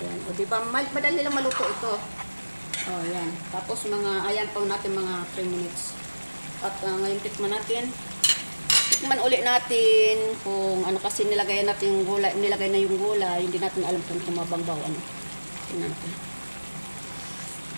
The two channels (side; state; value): both; inverted; correlation -1.00